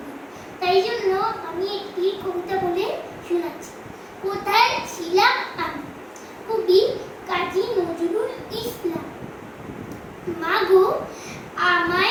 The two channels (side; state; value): both; identical; correlation 1.00